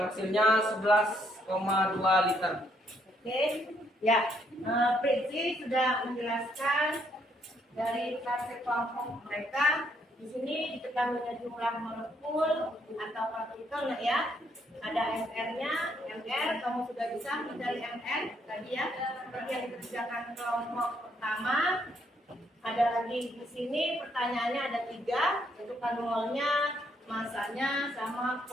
hasilnya 11,2 liter. Oke, ya, Pritzi sudah menjelaskan dari klasse kelompok mereka. Di sini diketahui jumlah molekul atau partikel, nah ya. Ada MR-nya, MR, kamu sudah bisa mencari MR tadi ya. Seperti yang dikerjakan kelompok pertama. Ada lagi di sini pertanyaannya ada 3, yaitu molnya, masanya, sama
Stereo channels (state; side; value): normal; both; correlation 0.72